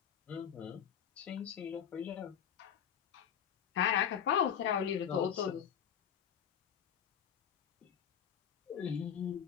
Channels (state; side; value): quieter; right; 8.5 dB